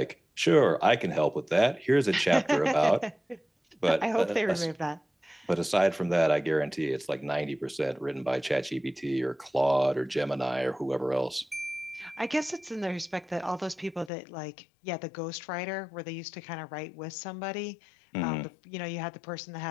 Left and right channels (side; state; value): right; drops out; at 14.1 s